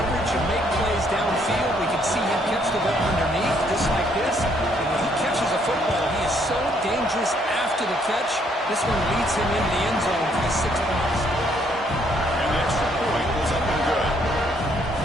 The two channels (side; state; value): both; normal; correlation 0.68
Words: and make plays downfield. We can see him catch the ball underneath, just like this. And when he catches a football, he is so dangerous after the catch. This one leads him into the end zone for the 6 points.